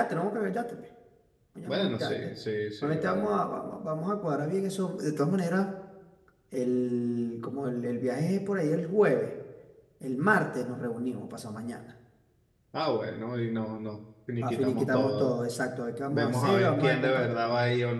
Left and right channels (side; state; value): both; identical; correlation 1.00